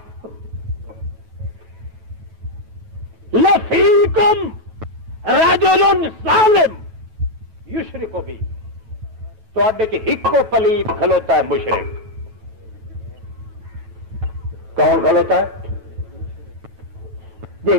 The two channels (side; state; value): left; late; 9.2 ms